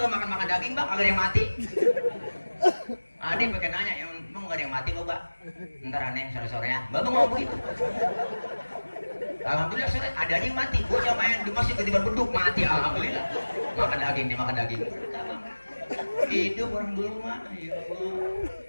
makan daging bang, kagak ada yang mati. Adik pakai nanya, emang gak ada yang mati bapak? Ntar aneh sore-sore ya, bapak mau begitu. Alhamdulillah sore ada aja yang mati. Bocah main di masjid ketiban beduk mati, alhamdulillah. Makan daging, dimakan daging. Hidup orang dulu mah, ya Allah.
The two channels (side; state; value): both; inverted; correlation -1.00